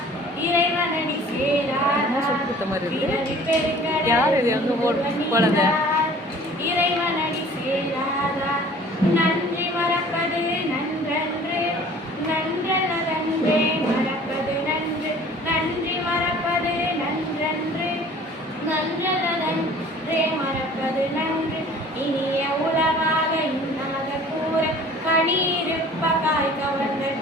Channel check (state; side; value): normal; both; correlation 0.49